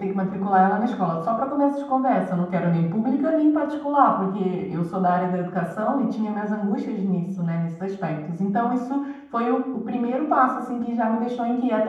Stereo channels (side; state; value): both; identical; correlation 1.00